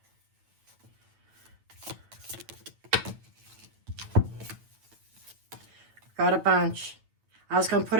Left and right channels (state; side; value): late; left; 9.1 ms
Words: Got a bunch. I was going to put